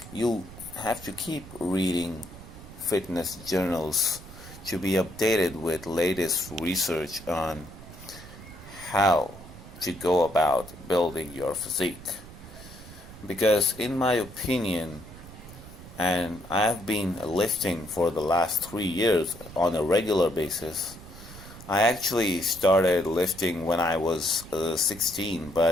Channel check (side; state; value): right; noise; rumble, 16 dB below the sound